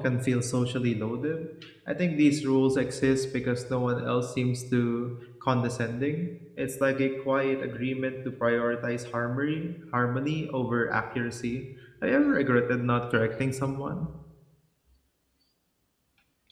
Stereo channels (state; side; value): identical; both; correlation 1.00